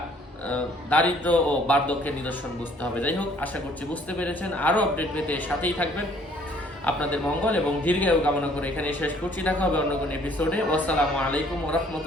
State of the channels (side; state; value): both; normal; correlation 0.59